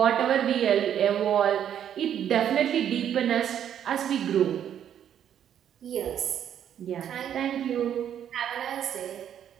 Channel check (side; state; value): left; quieter; 9.6 dB